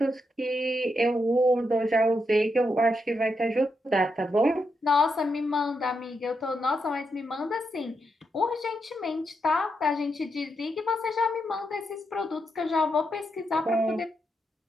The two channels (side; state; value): both; normal; correlation 0.83